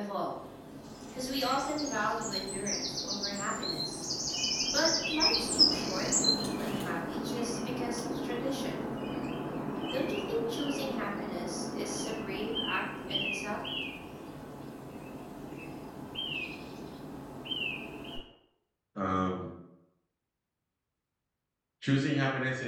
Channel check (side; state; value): both; identical; correlation 1.00